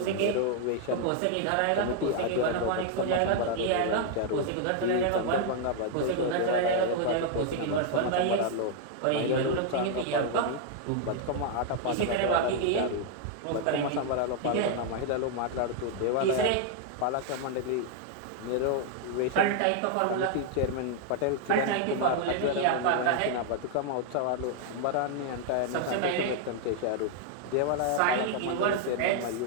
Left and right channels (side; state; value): both; different; correlation 0.00